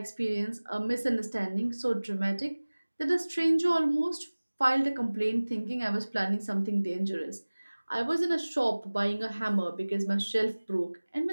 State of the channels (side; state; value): both; inverted; correlation -1.00